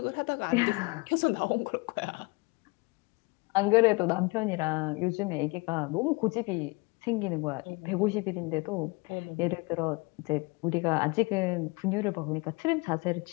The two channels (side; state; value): right; quieter; 27.0 dB